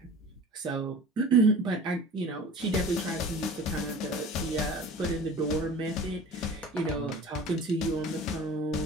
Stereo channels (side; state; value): both; normal; correlation 0.41